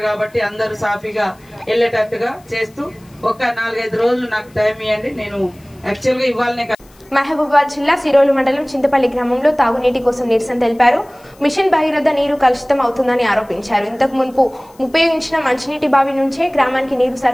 కాబట్టి అందరూ సాఫీగా వెళ్ళేటట్టుగా చేస్తూ ఒక 4-5 రోజులు నాకు టైం ఇవ్వండి. నేను యాక్చువల్గా ఇవ్వాలనే. మహబూబాబాద్ జిల్లా సిరోలు మండలం చింతపల్లి గ్రామంలో తాగునీటి కోసం నిరసన తెలిపారు. మిషన్ భగీరథ నీరు కలుషితం అవుతుందని ఆరోపించారు. ఇంతకు మున్పు ఉపయోగించిన మంచినీటి బావి నుంచే గ్రామానికి నీరు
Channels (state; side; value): noise; left; hiss, 30 dB below the sound